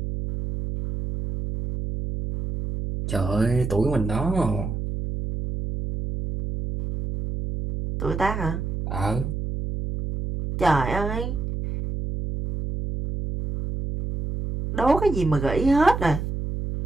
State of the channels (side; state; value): right; noise; hum, 4 dB below the sound